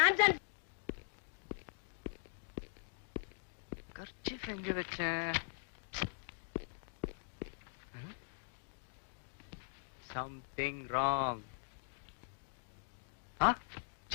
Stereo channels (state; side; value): silent; right; digital silence